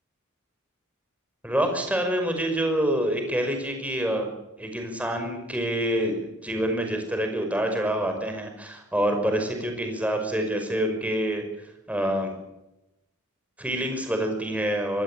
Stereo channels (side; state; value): both; normal; correlation 0.61